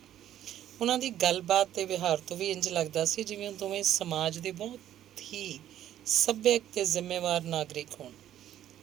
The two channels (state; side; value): quieter; left; 11.6 dB